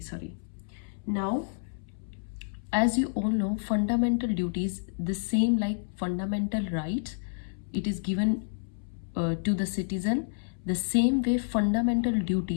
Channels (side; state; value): right; silent; 58 dB below the other